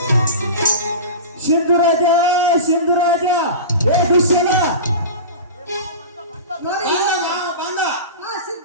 ಸಿಂಧುರಾಜ ಸಿಂಧುರಾಜ ಏ ದುಶ್ಯಲ ನೋಡಿ ಬಂದ ಮಾವ ಬಂದ ಹಾ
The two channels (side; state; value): both; inverted; correlation -0.30